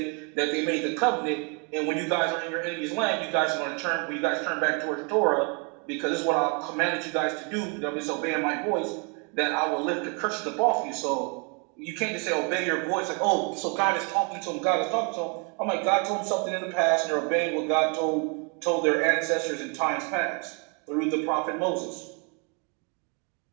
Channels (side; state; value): left; quieter; 35.1 dB